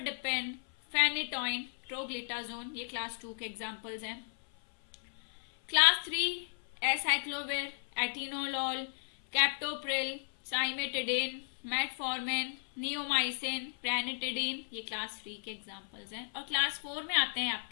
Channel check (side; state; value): right; silent; 55 dB below the other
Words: phenytoin, troglitazone, ये क्लास 2 के एग्जाम्पल्स हैं। Class 3 acyclovir, atenolol, captopril, cimetidine, metformin, neomycin, ranitidine, ये क्लास 3 के एग्जाम्पल्स हैं। और क्लास 4 में आते हैं